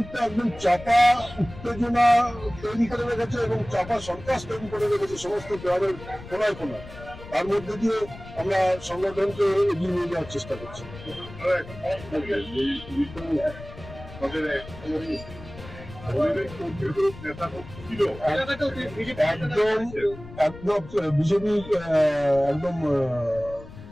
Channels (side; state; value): left; noise; rumble, 16 dB below the sound